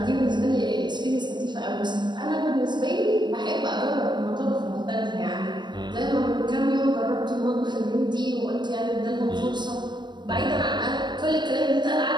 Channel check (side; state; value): left; late; 0.22 ms